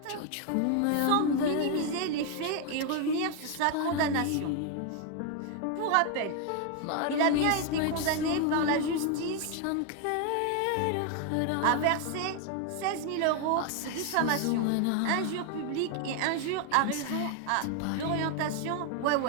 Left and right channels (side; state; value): both; different; correlation 0.01